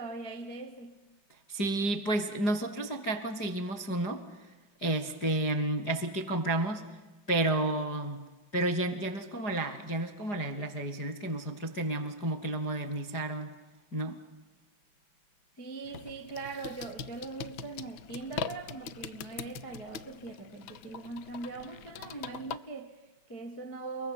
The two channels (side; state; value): right; late; 4.9 ms